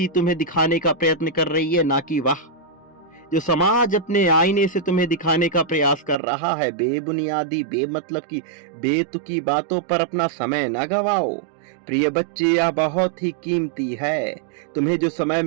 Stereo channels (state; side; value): drops out; left; at 6.2 s